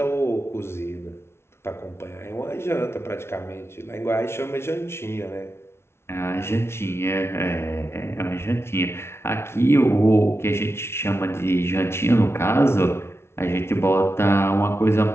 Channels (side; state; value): right; late; 0.12 ms